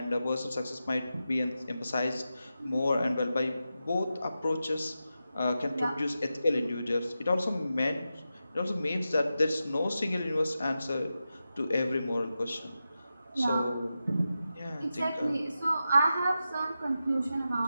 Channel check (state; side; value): inverted; both; correlation -0.91